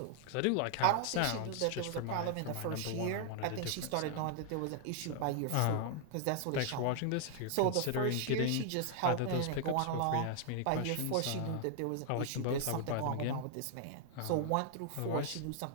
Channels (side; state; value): both; different; correlation 0.00